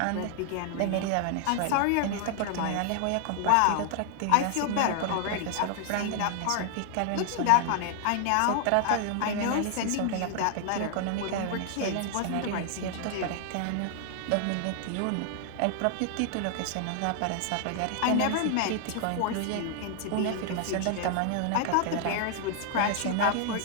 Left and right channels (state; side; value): different; both; correlation 0.00